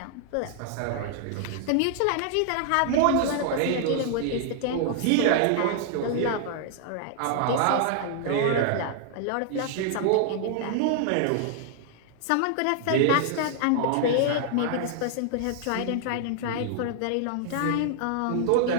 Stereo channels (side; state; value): both; different; correlation 0.00